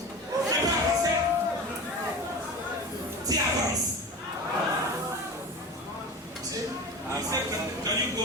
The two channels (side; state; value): both; normal; correlation 0.31